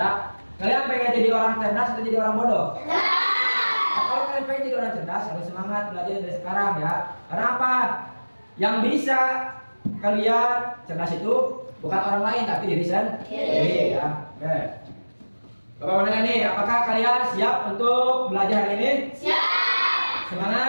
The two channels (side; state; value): both; inverted; correlation -1.00